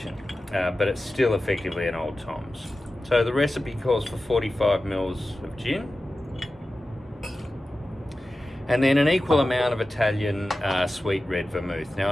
But it's still effectively an Old Tom's. So the recipe calls for 45 mils of gin, and then an equal amount of Italian sweet red vermouth. Now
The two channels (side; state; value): both; normal; correlation 0.94